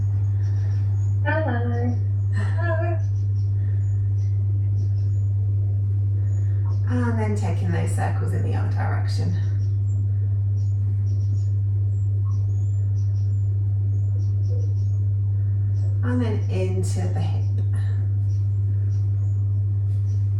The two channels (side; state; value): right; noise; rumble, 25 dB below the sound